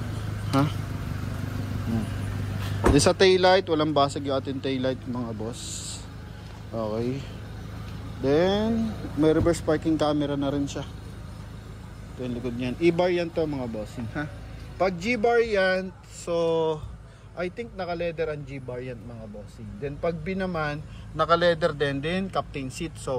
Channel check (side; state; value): both; identical; correlation 1.00